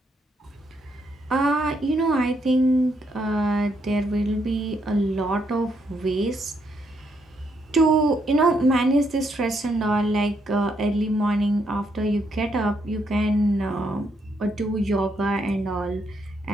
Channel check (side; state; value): both; normal; correlation 0.76